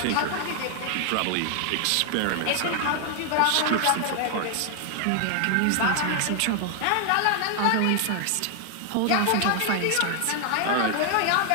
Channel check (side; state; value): both; different; correlation 0.00